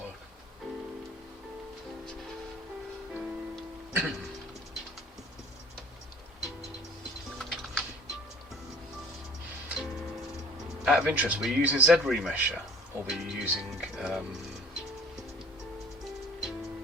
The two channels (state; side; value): normal; both; correlation 0.49